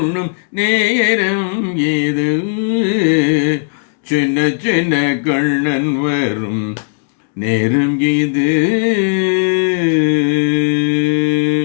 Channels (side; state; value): right; silent; 70 dB below the other